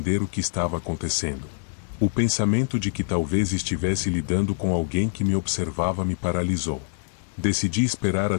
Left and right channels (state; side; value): silent; right; digital silence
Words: o que estava acontecendo. O pensamento de que talvez estivesse lidando com alguém que me observava me paralisou. Decidi esperar